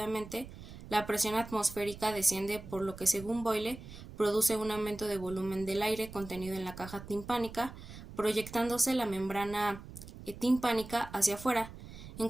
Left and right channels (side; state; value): right; noise; rumble, 14 dB below the sound